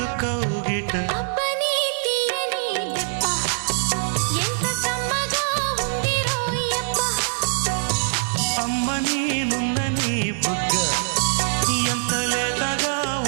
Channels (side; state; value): left; silent; 63 dB below the other